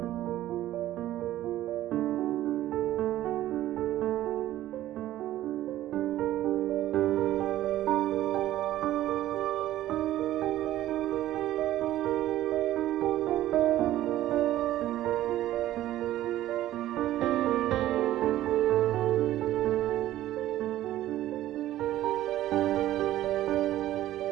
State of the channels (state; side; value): quieter; left; 14.0 dB